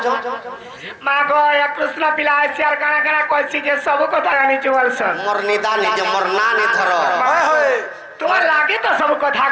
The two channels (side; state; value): both; identical; correlation 1.00